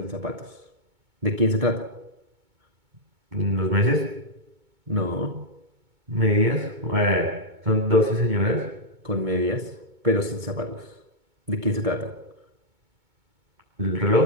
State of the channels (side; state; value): left; late; 2.2 ms